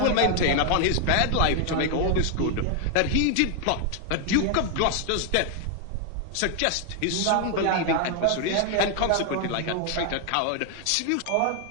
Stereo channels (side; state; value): both; different; correlation 0.00